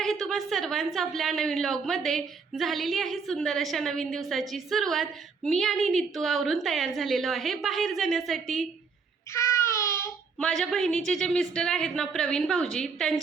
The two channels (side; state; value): left; quieter; 5.2 dB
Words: तुम्हा सर्वांचं आपल्या नवीन व्लॉगमध्ये. झालेली आहे सुंदर अशा नवीन दिवसाची सुरुवात. मी आणि नित्तू आवरून तयार झालेलो आहे बाहेर जाण्यासाठी. माझ्या बहिणीचे जे मिस्टर आहेत ना, प्रवीण भाऊजी,